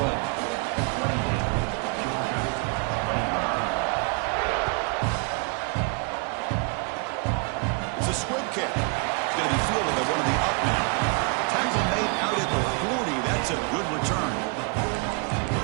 It's a squib kick. It's going to be fielded by one of the up men. Tackle made out at the 40. That's a good return.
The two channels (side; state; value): left; quieter; 34.5 dB